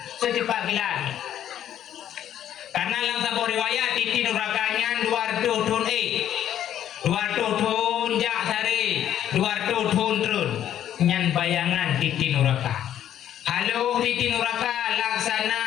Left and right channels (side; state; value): right; quieter; 10.8 dB